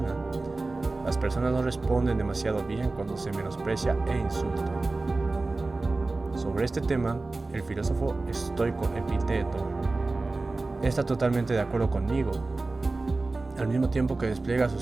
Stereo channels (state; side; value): quieter; left; 3.3 dB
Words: las personas no responden demasiado bien cuando se menosprecia e insulta. Sobre este tema, el filósofo estoico Epicteto está totalmente de acuerdo conmigo, al mismo tiempo que despliega su